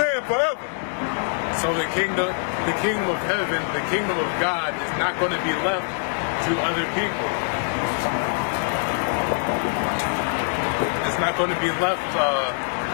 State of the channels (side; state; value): right; silent; 56 dB below the other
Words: forever. So the kingdom of heaven, the kingdom of God is not going to be left to other people. It's not going to be left